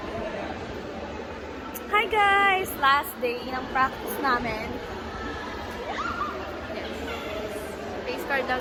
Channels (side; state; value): both; identical; correlation 1.00